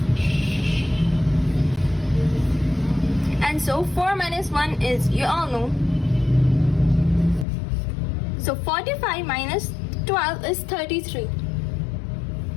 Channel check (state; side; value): drops out; right; at 7.5 s